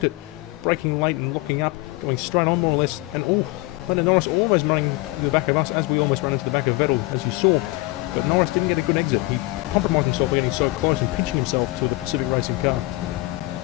it. Braking late and locking up. Going straight on more or less. And oh, Lando Norris almost running to the back of us as we almost ran into the back of Vettel, as you saw. But Norris didn't get a good exit. He compromised himself by getting so close and pinching himself to the Pacific Racing car.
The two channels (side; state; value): right; quieter; 21.3 dB